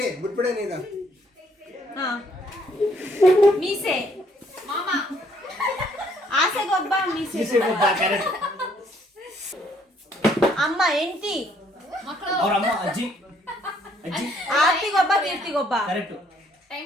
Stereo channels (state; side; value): normal; both; correlation 0.66